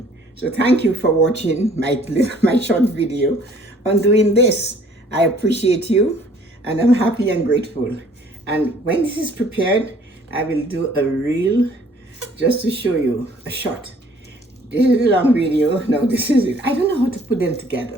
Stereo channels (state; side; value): normal; both; correlation 0.57